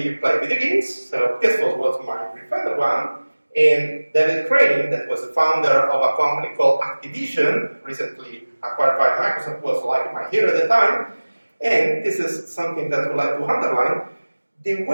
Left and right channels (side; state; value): both; inverted; correlation -1.00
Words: you play video games. So this was my preferred one. And David Crane, that was the founder of a company called Activision, recently acquired by Microsoft, was like my hero at the time. And this is something that I would like to underline. The